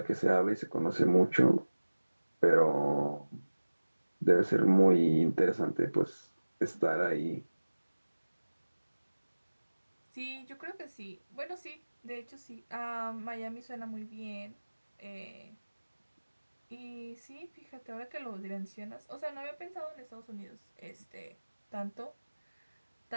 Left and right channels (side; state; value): both; inverted; correlation -1.00